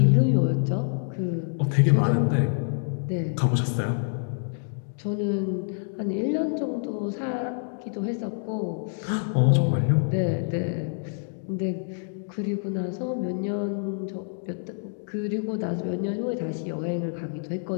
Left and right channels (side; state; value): right; silent; digital silence